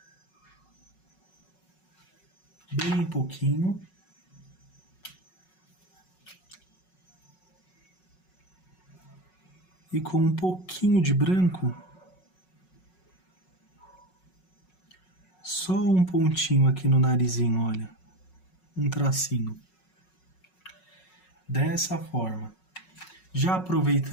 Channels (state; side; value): late; right; 5.4 ms